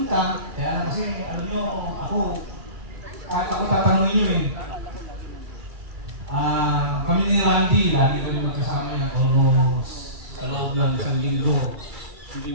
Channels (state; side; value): late; left; 2.3 ms